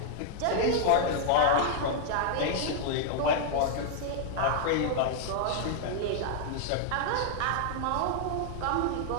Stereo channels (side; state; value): both; different; correlation -0.01